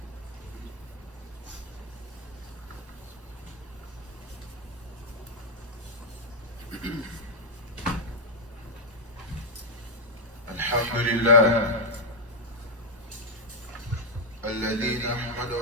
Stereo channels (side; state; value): both; normal; correlation 0.00